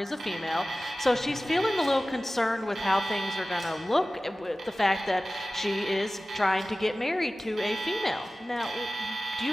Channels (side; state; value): both; normal; correlation 0.96